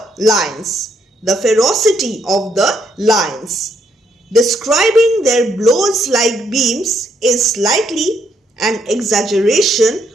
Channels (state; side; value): normal; both; correlation 0.74